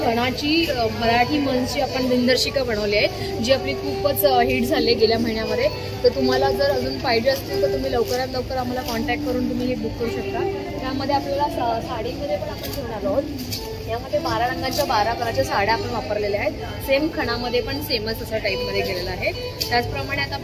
मराठी मंचची आपण दिनदर्शिका बनवली आहे, जी आपली खूपच हिट झाली गेल्या महिन्यामध्ये. तर तुम्हाला जर अजून पाहिजे असतील तर तुम्ही लवकरात लवकर आम्हाला कॉन्टॅक्ट करून तुम्ही हे बुक करू शकता. त्यामध्ये आपल्याला साडीमध्ये पण आपण घेऊन आलो आहोत. यामध्ये 12 रंगाच्या 12 कलरच्या साड्या आपण वापरलेल्या आहेत. सेम खणामध्ये पण सेमच असं टाईपमध्ये गेलेलं आहे. त्याचप्रमाणे आता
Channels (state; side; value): identical; both; correlation 1.00